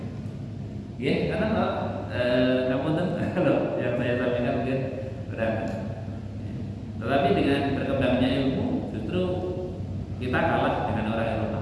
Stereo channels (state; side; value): identical; both; correlation 1.00